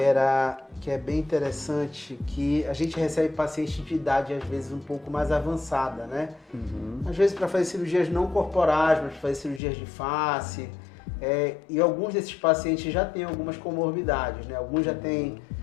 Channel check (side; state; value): right; drops out; at 9.6 s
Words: bem interessante, que a gente recebe pacientes de idade às vezes um pouco mais avançada, né? Às vezes para fazer cirurgias não corporais, mas para fazer cirurgias de face. E alguns desses pacientes já têm algumas comorbidades, né? Alguns já têm